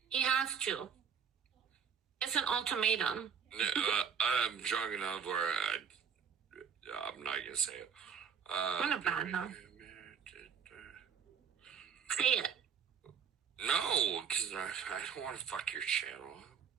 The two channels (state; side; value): quieter; left; 6.9 dB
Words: He has to. It's an ultimatum. I'm drunk enough where I'm not gonna say it. I'm gonna ban him. Say it. No, because I don't want to fuck your channel.